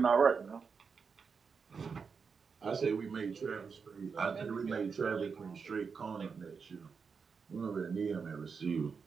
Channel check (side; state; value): left; quieter; 5.6 dB